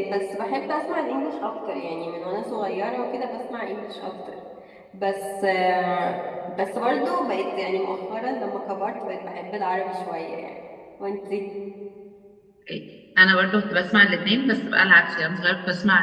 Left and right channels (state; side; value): identical; both; correlation 1.00